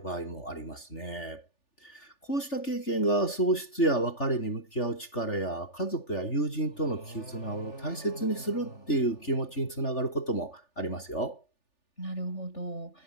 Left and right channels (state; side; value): late; right; 3.4 ms